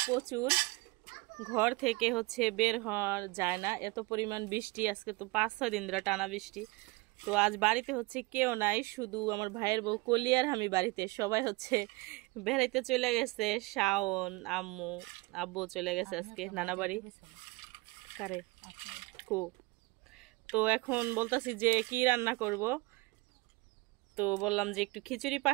প্রচুর। ঘর থেকে হচ্ছে বের হওয়া যায় না, এত পরিমাণ বৃষ্টি। আজকে তো 5-6 দিন ধরে টানা বৃষ্টি। তো আজ বাড়িতে হচ্ছে কেউ নাই, শুধু আমার ভাইয়ের বউ কলি আর আমি বাড়িতে। সবাই হচ্ছে বেড়াইতে চলে গেছে। শাওন, আম্মু, আব্বু চলে গেছে আজকে নানা বাড়ি। কারে কো। তো এখন বলতাছি যে কি রান্না করব। তো বললাম যে একটু খিচুড়ি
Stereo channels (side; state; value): left; quieter; 24.9 dB